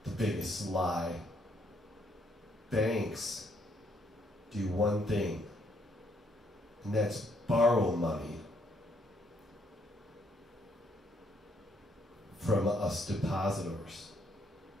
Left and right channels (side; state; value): both; normal; correlation 0.71